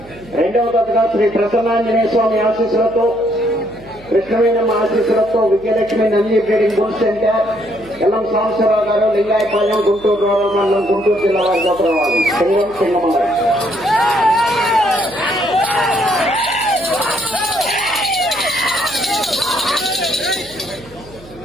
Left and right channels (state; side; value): noise; right; hum, 22 dB below the sound